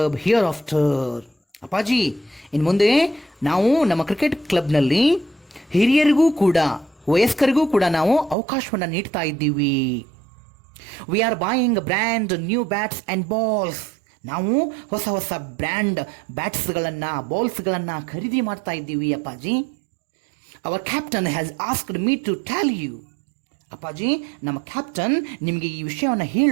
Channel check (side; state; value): left; drops out; at 8.3 s